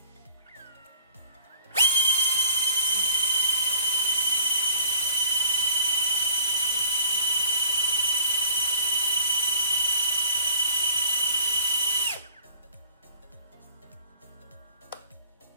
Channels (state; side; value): inverted; both; correlation -0.51